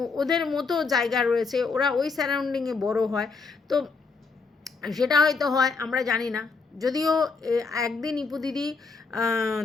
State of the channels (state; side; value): quieter; right; 4.6 dB